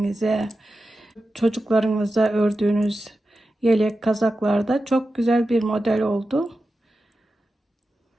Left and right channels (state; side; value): normal; both; correlation 0.92